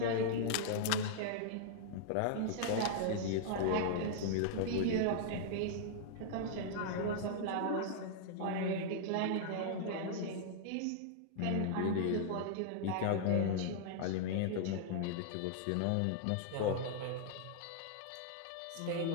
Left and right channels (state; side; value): different; both; correlation -0.01